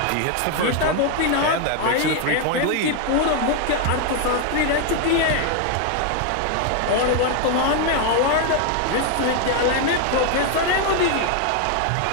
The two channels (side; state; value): both; different; correlation 0.00